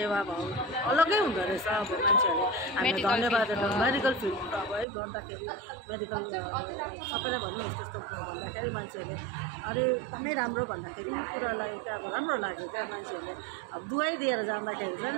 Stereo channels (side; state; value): left; drops out; at 4.9 s